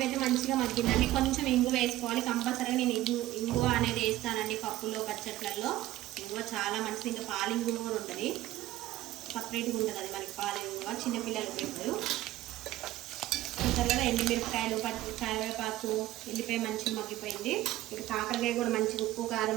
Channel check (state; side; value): quieter; left; 15.4 dB